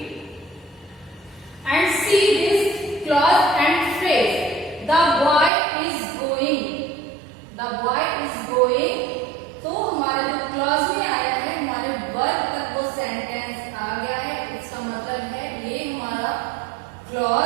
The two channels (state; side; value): drops out; left; at 5.5 s